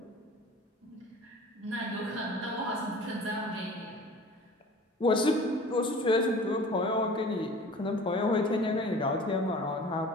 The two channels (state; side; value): normal; both; correlation 0.43